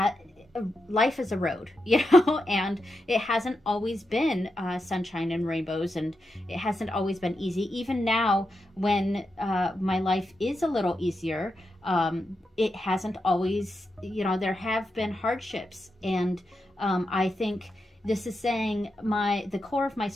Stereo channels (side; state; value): both; normal; correlation 0.87